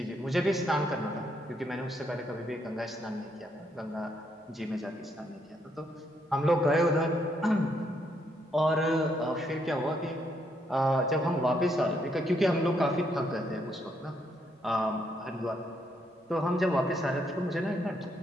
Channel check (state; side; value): normal; both; correlation 0.75